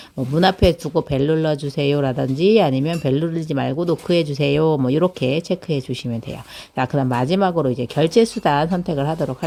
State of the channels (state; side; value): identical; both; correlation 1.00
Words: 뭐 문 앞에 두고 벨 눌러주세요 라든지 아니면 벨 누르지 말고 노크해 주세요 뭐 이렇게 체크해 주시면 돼요. 자, 그다음 마지막으로 이제 결제 수단 선택을 하도록